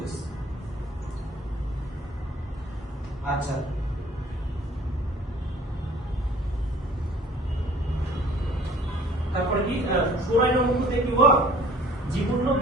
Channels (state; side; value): normal; both; correlation 0.53